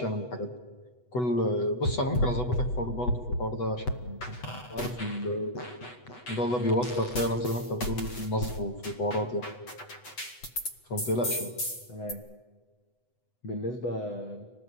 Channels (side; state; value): right; late; 8.1 ms